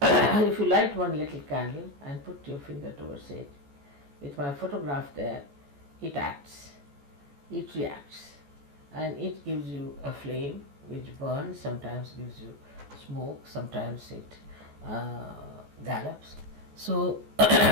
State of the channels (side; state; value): left; late; 14 ms